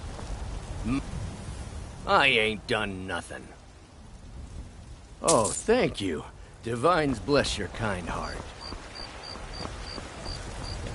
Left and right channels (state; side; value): identical; both; correlation 1.00